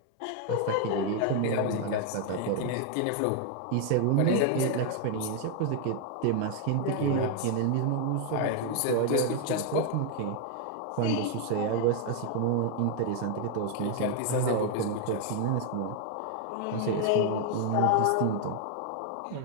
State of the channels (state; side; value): different; both; correlation 0.00